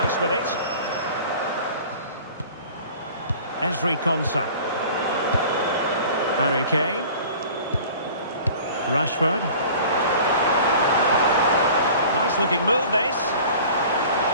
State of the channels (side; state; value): both; inverted; correlation -0.44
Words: with it. Ezri Konsa. Harry Kane. Rashford. Nice looking move, this.